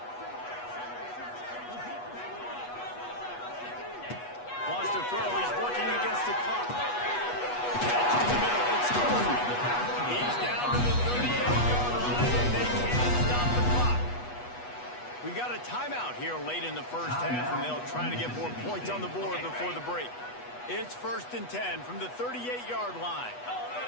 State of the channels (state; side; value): late; right; 8.2 ms